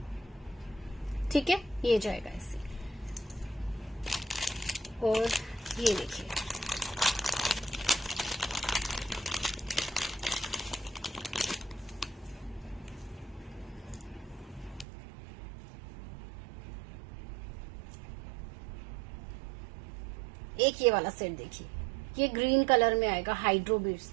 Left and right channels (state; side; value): drops out; left; at 14.9 s